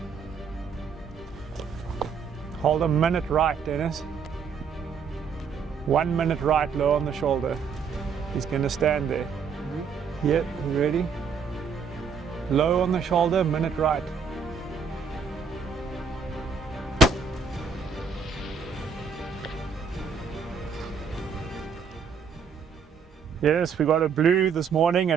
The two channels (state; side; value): quieter; left; 5.9 dB